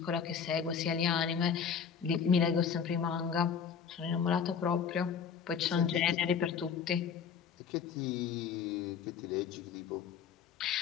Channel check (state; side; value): quieter; right; 7.0 dB